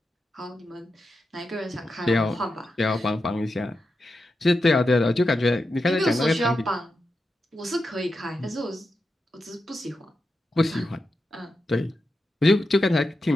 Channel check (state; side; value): normal; both; correlation 0.88